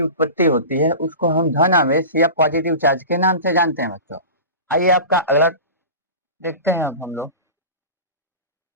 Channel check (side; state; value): both; inverted; correlation -0.32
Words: उत्पत्ति होती है उसको हम धन आवेश या पॉजिटिव चार्ज के नाम से जानते हैं बच्चों। आइए आपका एरर देखते हैं हम लोग।